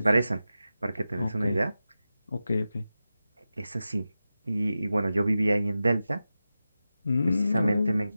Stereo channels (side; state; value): both; inverted; correlation -0.92